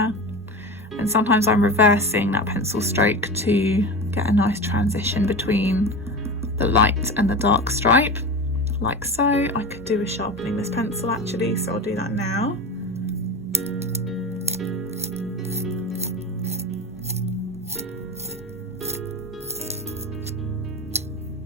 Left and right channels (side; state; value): both; normal; correlation 0.26